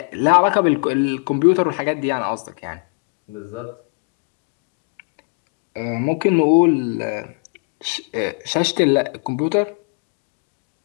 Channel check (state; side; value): quieter; right; 40.0 dB